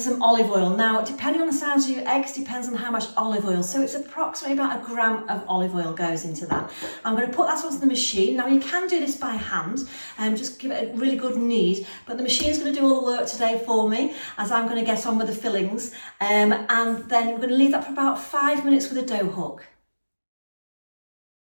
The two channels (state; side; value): inverted; both; correlation -1.00